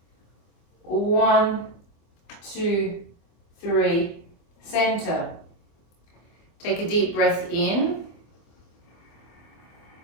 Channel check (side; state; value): right; late; 24 ms